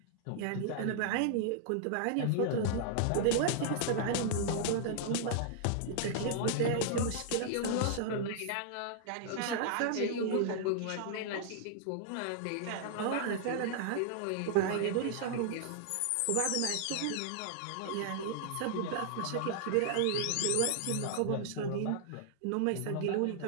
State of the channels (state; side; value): different; both; correlation -0.01